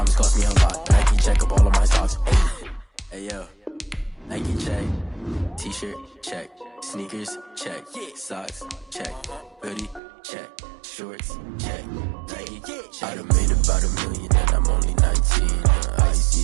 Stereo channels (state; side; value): drops out; left; at 10.0 s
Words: cost me a lot. Nike check up all of my stocks. Hey yo, Nike check. T-shirt check. Sneakers check. Socks check. Hoodie check. Shorts check. Nike check. I done made about $1 million and I'm only 19.